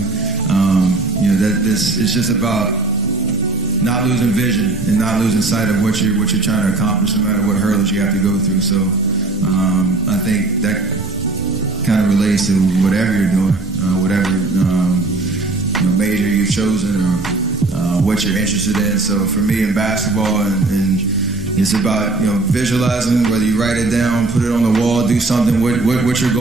It's just about not losing vision and not losing sight of what you're trying to accomplish, no matter what hurdles you have to go through. So I think that kind of relates to whatever you're doing, whatever major you've chosen or what you're interested in. So for me in basketball, and it's about visualizing, whether you write it down, put it on the wall, do something, what your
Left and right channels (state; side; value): quieter; left; 3.3 dB